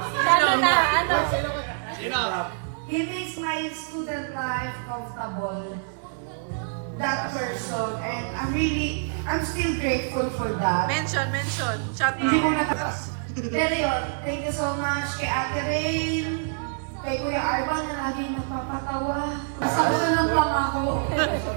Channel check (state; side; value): silent; left; 61 dB below the other